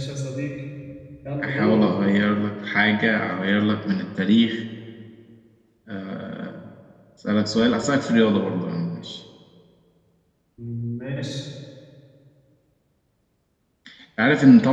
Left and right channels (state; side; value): identical; both; correlation 1.00